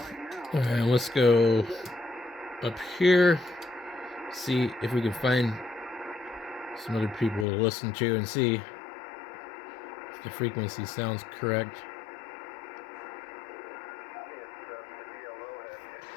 Alright, let's go up here, see if we can find some other people to listen to and see if the frequency sounds correct.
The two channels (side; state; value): right; drops out; at 7.5 s